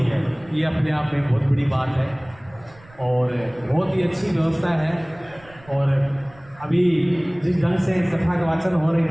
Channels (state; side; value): noise; right; rumble, 25 dB below the sound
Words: है, ये अपने आप में बहुत बड़ी बात है और बहुत ही अच्छी व्यवस्था है। और अभी जिस ढंग से कथा का वाचन हो रहे